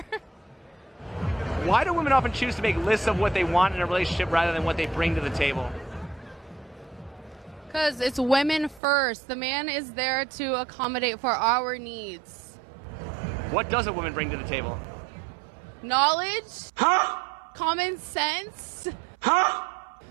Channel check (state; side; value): drops out; left; at 8.8 s